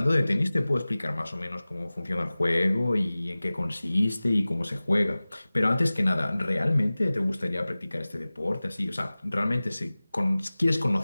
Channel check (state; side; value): inverted; both; correlation -0.98